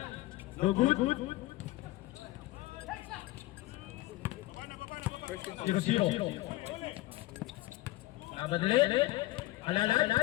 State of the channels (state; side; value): quieter; right; 18.3 dB